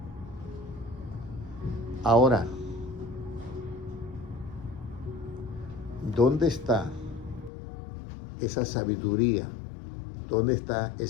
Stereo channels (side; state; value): right; drops out; at 7.5 s